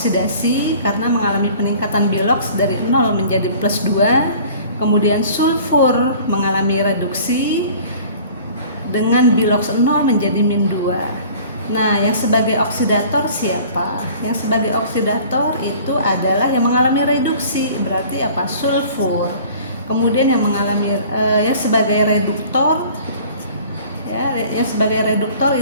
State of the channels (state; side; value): inverted; both; correlation -0.48